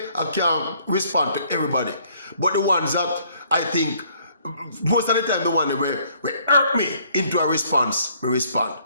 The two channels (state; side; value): inverted; both; correlation -0.63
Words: I can't respond to everybody. But the ones that I think, most of the time the one that will hurt me into a response, we respond.